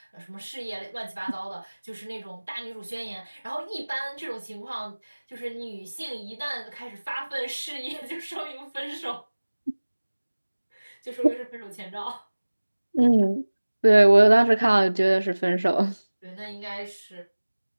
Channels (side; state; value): both; inverted; correlation -1.00